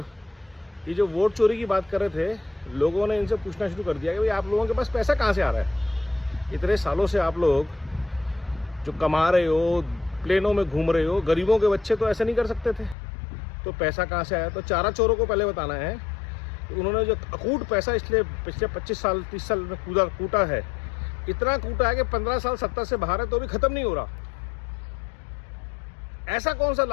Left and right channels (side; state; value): right; drops out; at 13.0 s